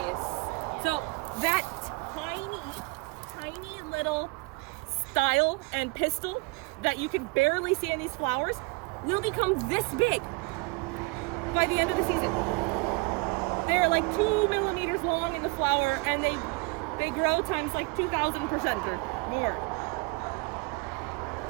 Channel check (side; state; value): left; quieter; 28.3 dB